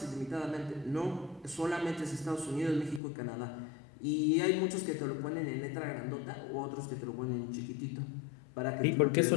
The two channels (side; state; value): right; drops out; at 3.0 s